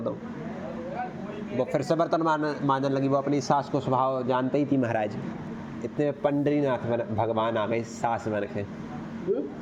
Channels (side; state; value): both; identical; correlation 1.00